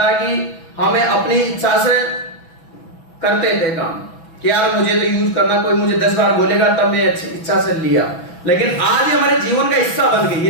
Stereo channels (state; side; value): late; right; 6.1 ms